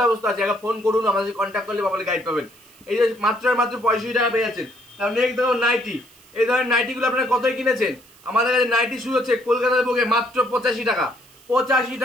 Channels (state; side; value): noise; right; hiss, 26 dB below the sound